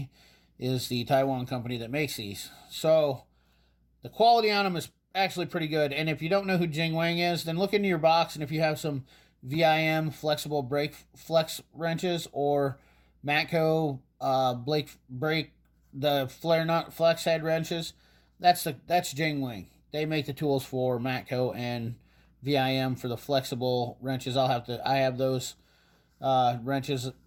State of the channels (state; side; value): identical; both; correlation 1.00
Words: is the Taiwan company that makes these. So the quality on them is actually pretty good. And if you don't know who Jingwang is, then look into your box, and if you have some VIM flexible brake flex wrenches or Matco brake the flare nut flex head wrenches, that's Jingwang. They make the tools for Matco and VIM for the flexible wrenches. I have those wrenches